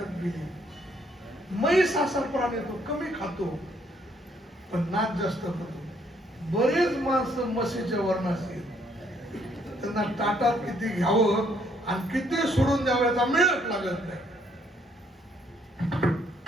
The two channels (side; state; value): both; normal; correlation 0.68